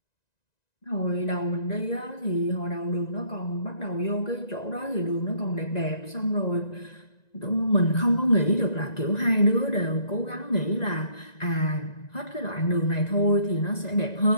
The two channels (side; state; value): right; late; 1.9 ms